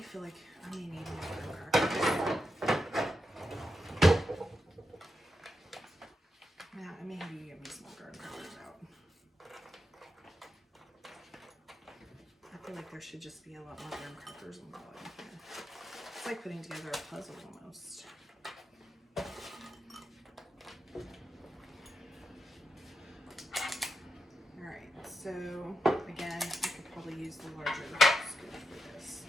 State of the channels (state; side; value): normal; both; correlation 0.87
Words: feel like I may need more crackers. Yeah, I may have you give me some more. feel like there should just be a lot more graham crackers on the bottom here. It's like putting together a puzzle almost. Alright, so again, I could probably use the larger scoop for this.